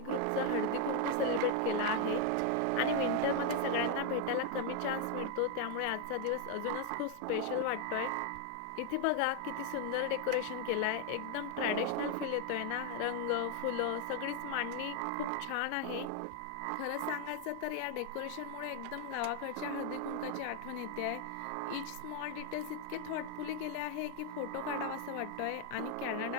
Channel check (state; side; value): different; both; correlation 0.00